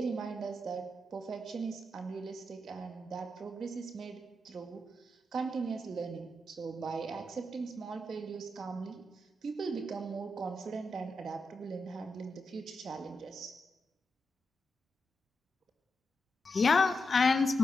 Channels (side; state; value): both; normal; correlation 0.86